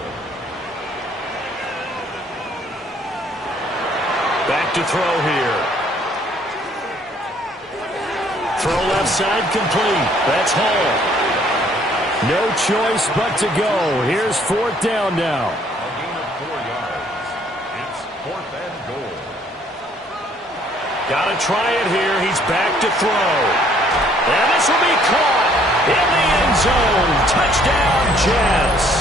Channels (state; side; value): normal; both; correlation 0.62